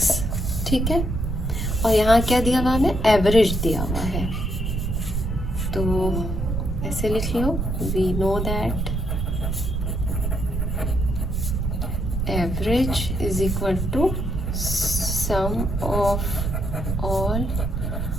ठीक है, और यहाँ क्या दिया हुआ हमें, एवरेज दिया हुआ है। तो ऐसे लिख लो, we know that average is equal to sum of all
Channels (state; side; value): noise; right; rumble, 1 dB below the sound